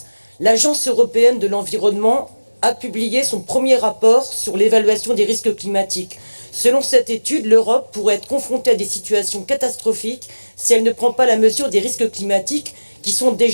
l'Agence européenne de l'environnement a publié son premier rapport sur l'évaluation des risques climatiques. Selon cette étude, l'Europe pourrait être confrontée à des situations catastrophiques si elle ne prend pas la mesure des risques climatiques qui sont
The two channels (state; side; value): inverted; both; correlation -1.00